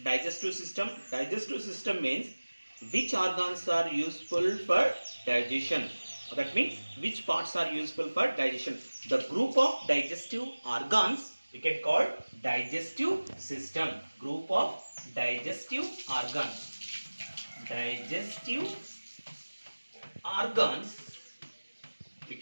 digestive system? Digestive system means which organs are useful for digestion. That means which parts are useful for digestion. The group of digestive organs we can call digestive system. Group of digestive organs. Digestive organs we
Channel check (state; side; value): inverted; both; correlation -1.00